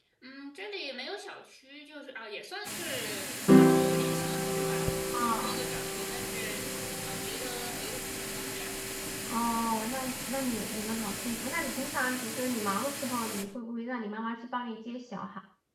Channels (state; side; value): identical; both; correlation 1.00